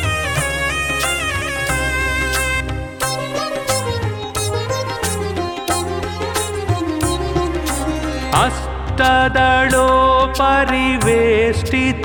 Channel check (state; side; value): identical; both; correlation 1.00